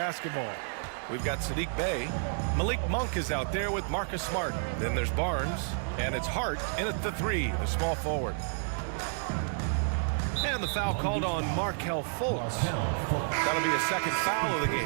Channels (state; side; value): silent; left; digital silence